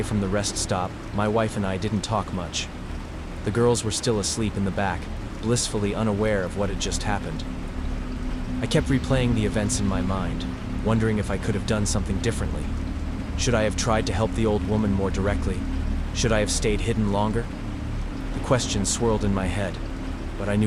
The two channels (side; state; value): both; identical; correlation 1.00